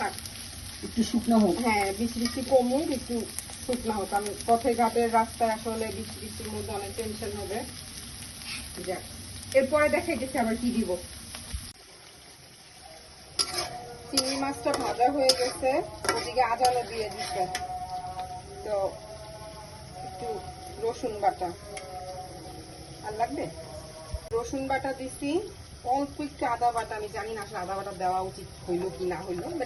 একটু শুকনো হোক। হ্যাঁ, বৃষ্টি কমুক, একটু শুকনো হোক। কারণ পথে ঘাটের রাস্তায় আসলে বৃষ্টির মধ্যে অনেক টেনশন হবে। যাক, এরপরে দেখাইতেছি আবার কি দিব। চিংড়ি মাছটা ভাজা হয়ে গেছে, ওদিকে আদাও দিয়ে দিচ্ছে। তো একটু রসুন বাটা আর লাগবে, রসুন বাটা দিছি, অল্প একটু আদা বাটা। আমি জানি না আসলে আদা বাটা দেওয়া উচিত হইলো কি না হইলো,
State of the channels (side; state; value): both; identical; correlation 1.00